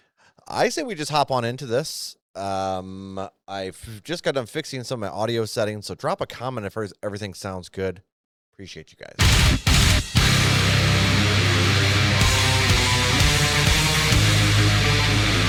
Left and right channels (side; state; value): both; identical; correlation 1.00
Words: I say we just hop on into this. I've just got done fixing some of my audio settings, so drop a comment if everything sounds good. Appreciate you guys.